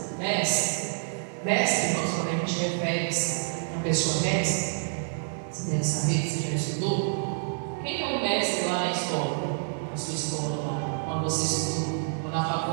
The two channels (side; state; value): left; silent; digital silence